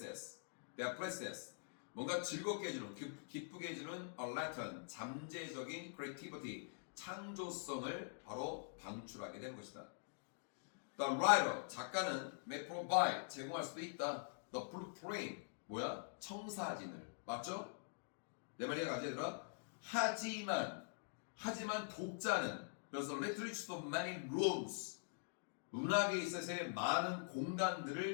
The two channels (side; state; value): right; silent; digital silence